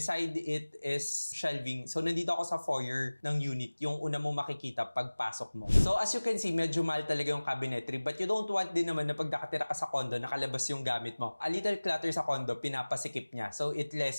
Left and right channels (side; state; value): both; inverted; correlation -1.00